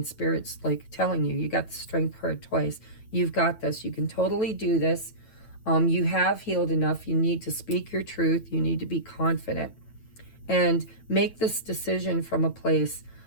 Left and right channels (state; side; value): late; right; 9.1 ms